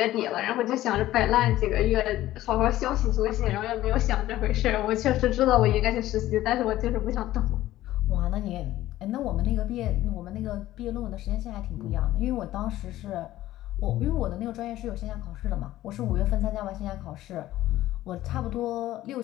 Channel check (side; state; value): right; quieter; 14.9 dB